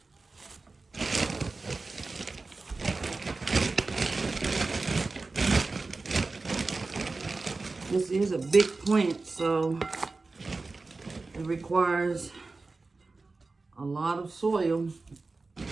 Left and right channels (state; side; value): quieter; left; 3.7 dB